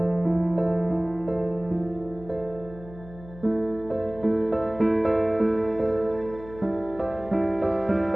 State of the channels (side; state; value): left; noise; hum, 17 dB below the sound